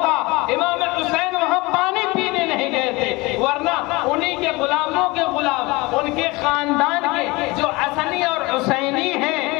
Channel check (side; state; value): right; quieter; 23.4 dB